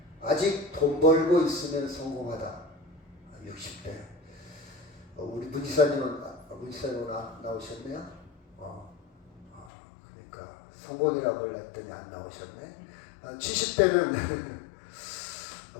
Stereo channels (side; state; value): right; drops out; at 9.7 s